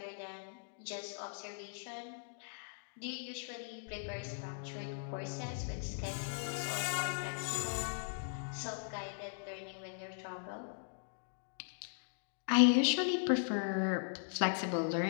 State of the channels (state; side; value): silent; right; digital silence